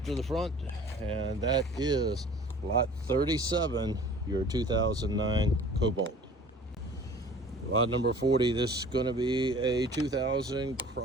to the front, and that is lot 37, your 2009 Cobalt. Lot number 40, this is going to be a 2000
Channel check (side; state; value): both; normal; correlation 0.46